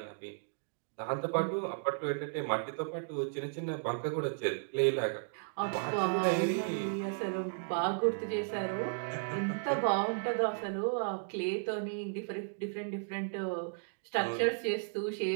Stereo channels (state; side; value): silent; left; digital silence